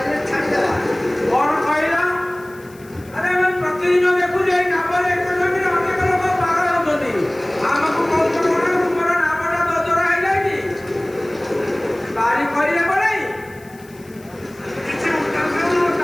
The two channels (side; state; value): left; noise; hiss, 26 dB below the sound